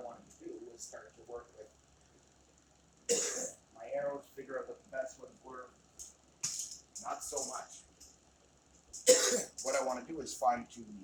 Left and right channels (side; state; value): both; identical; correlation 1.00